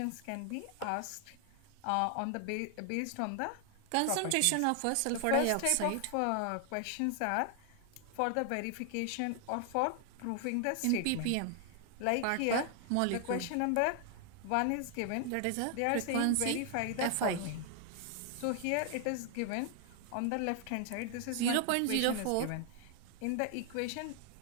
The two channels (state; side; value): different; both; correlation 0.00